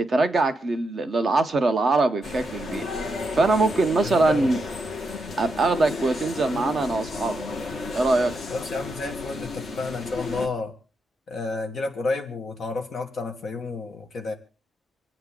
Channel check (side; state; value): both; normal; correlation 0.83